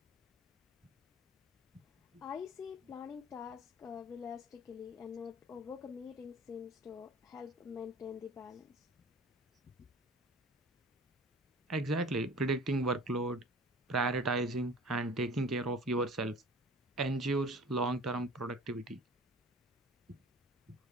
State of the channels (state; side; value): normal; both; correlation 0.42